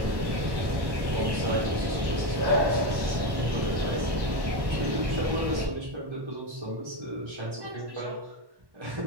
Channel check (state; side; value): late; left; 1.1 ms